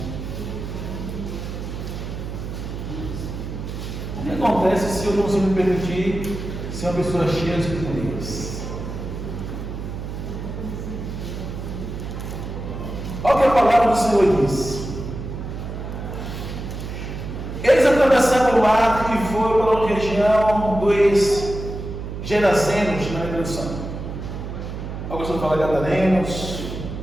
O que acontece se eu não me permitir ser uma pessoa cheia de poderes? Olha o que a palavra do Senhor diz. Eles atravessaram o mar e foram para a região dos Gerazenos, na introdução. Alguns vão falar Gadarenos,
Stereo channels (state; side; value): noise; right; hum, 7 dB below the sound